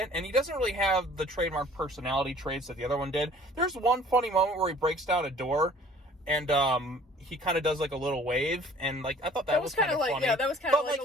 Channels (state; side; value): normal; both; correlation 0.51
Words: And he doesn't really have the trademark personality traits that the other one did. There's one funny moment where he breaks down a door, and he kind of does like a little wave, and like I thought that was kind of funny. Yeah, that was kind of like.